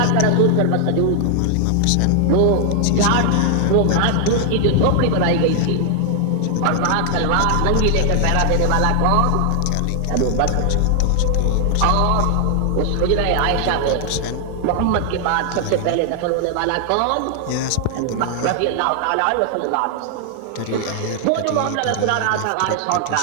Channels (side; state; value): both; different; correlation 0.00